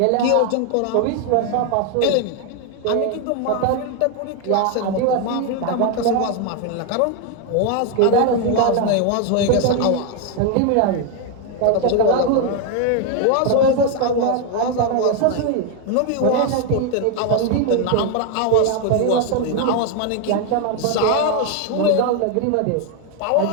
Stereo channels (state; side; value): different; both; correlation 0.01